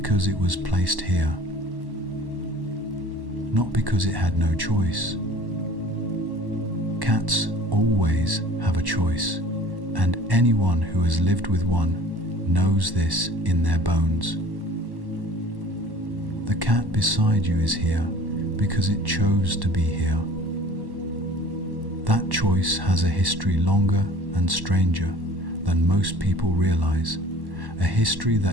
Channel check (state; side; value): late; left; 1.1 ms